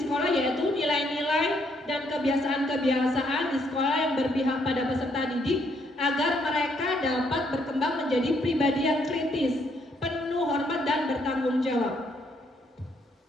yaitu nilai-nilai dan kebiasaan-kebiasaan di sekolah yang berpihak pada peserta didik agar mereka dapat berkembang menjadi pribadi yang kritis, penuh hormat dan bertanggung jawab.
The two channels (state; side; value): normal; both; correlation 0.71